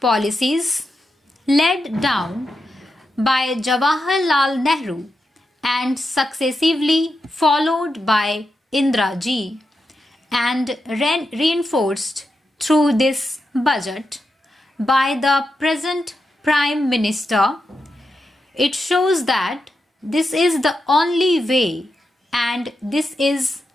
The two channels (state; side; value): normal; both; correlation 0.87